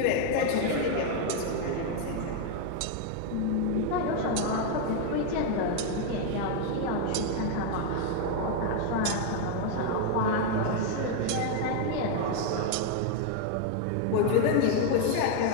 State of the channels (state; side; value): different; both; correlation 0.01